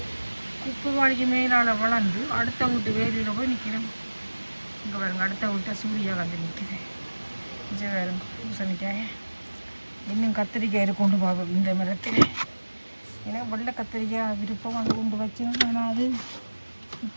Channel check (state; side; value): inverted; both; correlation -1.00